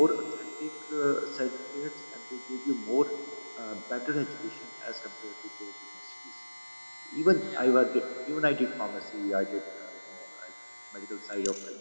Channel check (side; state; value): both; inverted; correlation -1.00